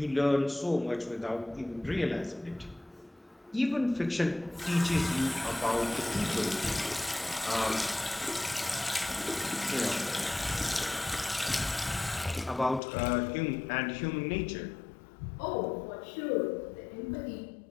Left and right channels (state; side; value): drops out; right; at 12.8 s